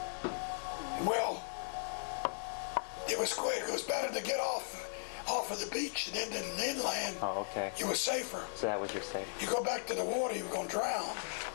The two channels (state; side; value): silent; right; digital silence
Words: Well, it was quick. It was better to get off of the beach and into the inland. Oh, okay. You were safer. So that was your safety. You go back to the water, you were going to drown.